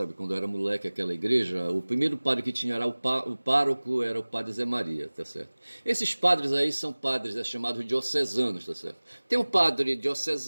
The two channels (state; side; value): inverted; both; correlation -1.00